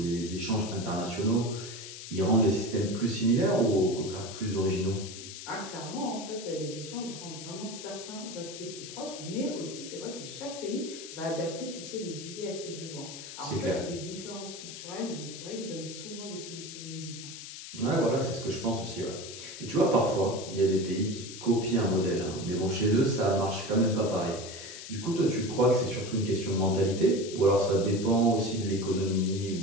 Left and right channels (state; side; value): noise; left; hiss, 11 dB below the sound